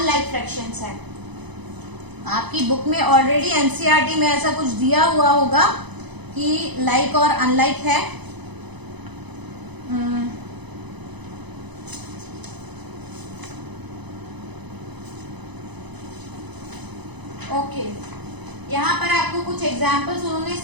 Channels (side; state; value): left; late; 1.0 ms